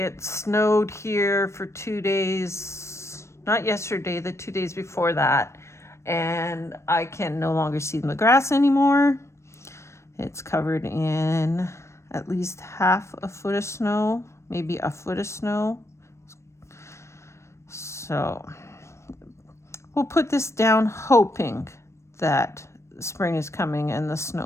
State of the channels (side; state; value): right; late; 0.13 ms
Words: snowed here for 2 days, not yesterday, the 2 days before that, and I can no longer see the grass anymore. It's covered in at least half a foot of snow, maybe a foot of snow. So we'll put this down hoping that spring is coming and the